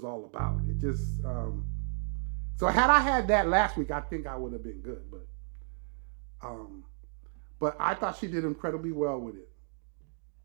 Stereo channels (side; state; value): left; silent; 56 dB below the other